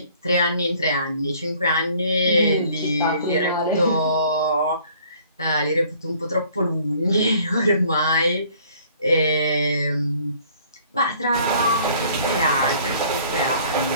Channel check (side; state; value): both; inverted; correlation -0.56